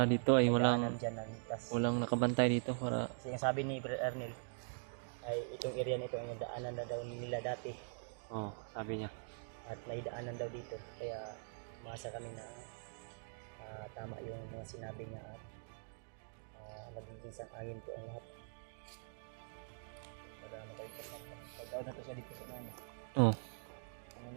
dito ay daanan dyan na ligtas. walang nakabantay dito para Kasi yung sabi ni Brad Arnel ay itong area nito ay daanan na daw nila dati sabi niya. at may daanan daw dito kaya umasa kami na tama yung mga sinabi niya at magiging sang-ayon po ang lahat para makalipas na pag-out na to siya dito sa mga ano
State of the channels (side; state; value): left; silent; digital silence